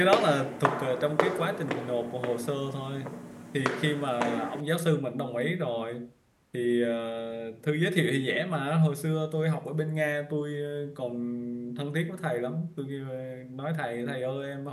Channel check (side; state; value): both; identical; correlation 1.00